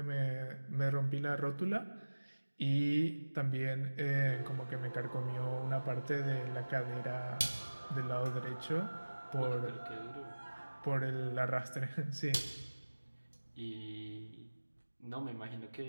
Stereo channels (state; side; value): inverted; both; correlation -1.00